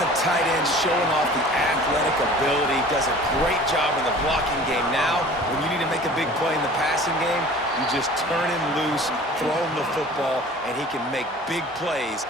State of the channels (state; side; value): normal; both; correlation 0.45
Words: the tight end showing off the athletic ability? Does a great job in the blocking game. Now, when you need to make a big play in the passing game, you just turn him loose, throw him the football, and he can make big plays